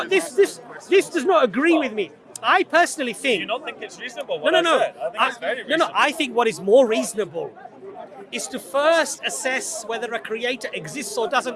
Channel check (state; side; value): identical; both; correlation 1.00